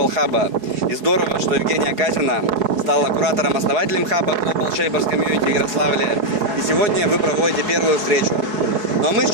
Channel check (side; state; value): left; late; 4.7 ms